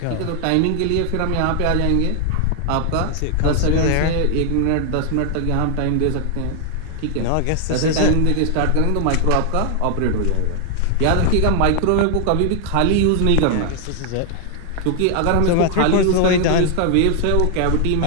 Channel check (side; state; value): both; different; correlation 0.00